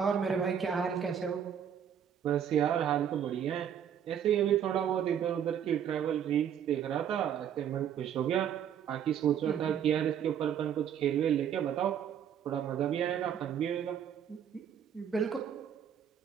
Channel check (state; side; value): quieter; left; 8.9 dB